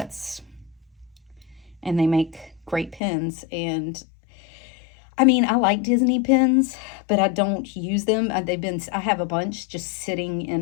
And they make great pins. And I mean, I like Disney pins, but I don't use them. I have a bunch just sitting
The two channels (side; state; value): right; drops out; at 3.0 s